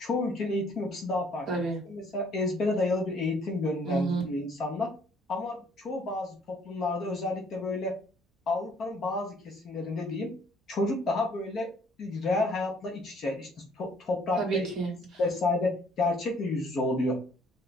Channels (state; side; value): normal; both; correlation 0.61